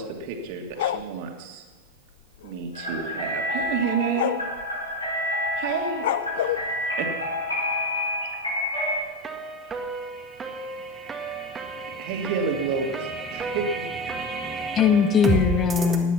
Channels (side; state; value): both; normal; correlation 0.21